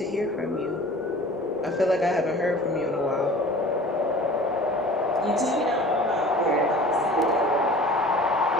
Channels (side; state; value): both; normal; correlation 0.44